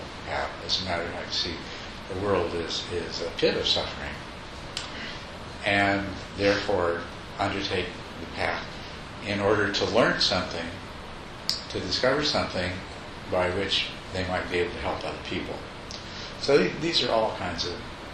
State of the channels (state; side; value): identical; both; correlation 1.00